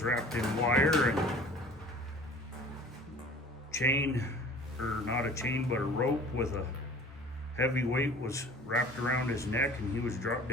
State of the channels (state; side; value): normal; both; correlation 0.46